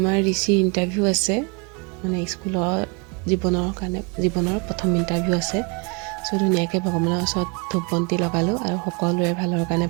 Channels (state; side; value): quieter; left; 31.4 dB